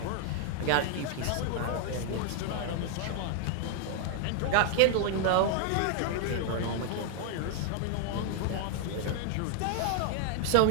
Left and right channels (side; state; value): both; different; correlation 0.00